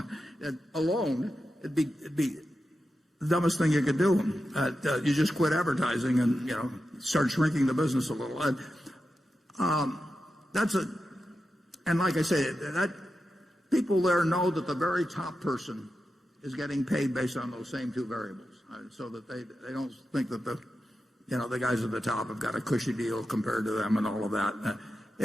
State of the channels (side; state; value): both; normal; correlation 0.90